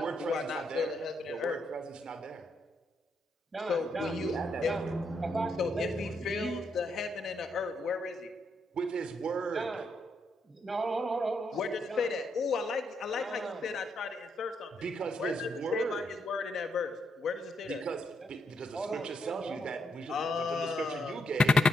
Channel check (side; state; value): both; normal; correlation 0.79